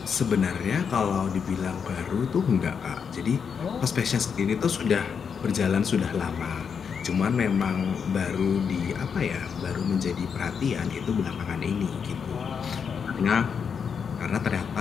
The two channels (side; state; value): right; quieter; 6.6 dB